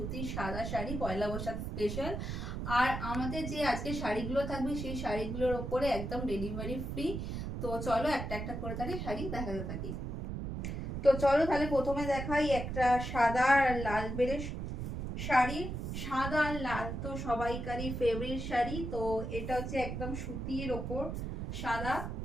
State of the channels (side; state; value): right; noise; rumble, 4 dB below the sound